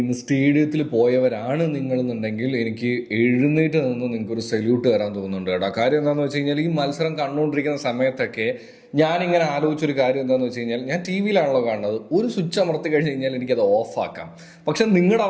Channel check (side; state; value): both; identical; correlation 1.00